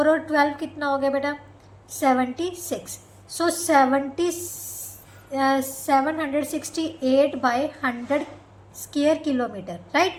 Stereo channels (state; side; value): identical; both; correlation 1.00